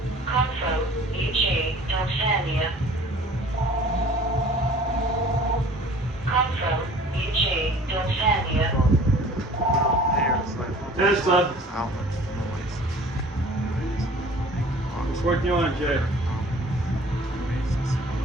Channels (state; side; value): normal; both; correlation 0.49